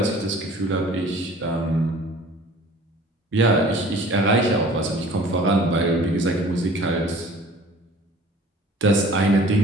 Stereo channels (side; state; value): both; normal; correlation 0.48